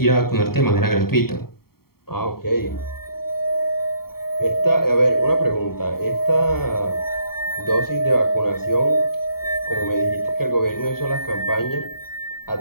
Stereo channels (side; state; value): right; late; 0.94 ms